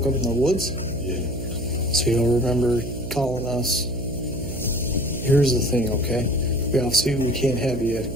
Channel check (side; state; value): right; noise; hum, 7 dB below the sound